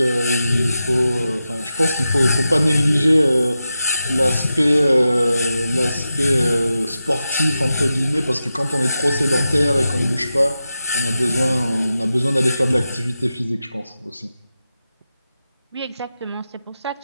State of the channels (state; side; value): inverted; both; correlation -0.91